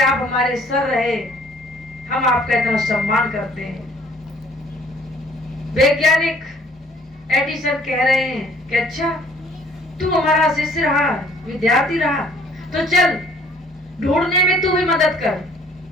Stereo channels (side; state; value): both; normal; correlation 0.58